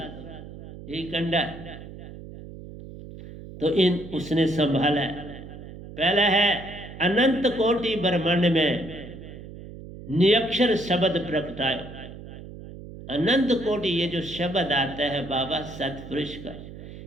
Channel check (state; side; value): noise; right; hum, 14 dB below the sound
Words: यही कंडा तो इन उसने संभाला है। पहला है अनंत कोटि ब्रह्मांड में निरक्षर शब्द प्रकटायो। अनंत कोटि, ये जो शब्द आता है बाबा सतपुरुष का,